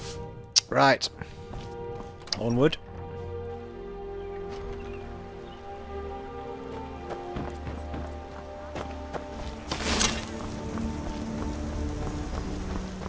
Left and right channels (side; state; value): both; identical; correlation 1.00